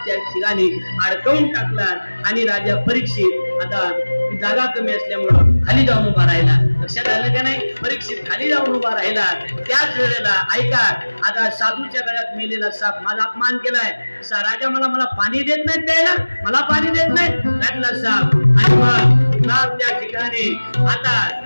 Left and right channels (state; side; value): inverted; both; correlation -1.00